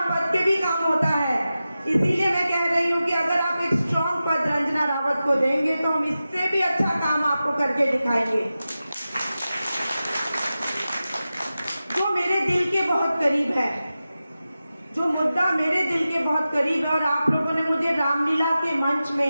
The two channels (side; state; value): both; inverted; correlation -0.93